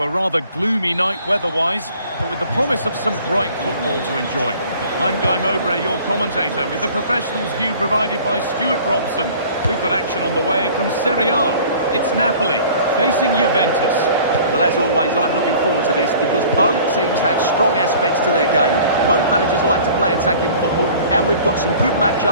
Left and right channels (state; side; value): inverted; both; correlation -0.48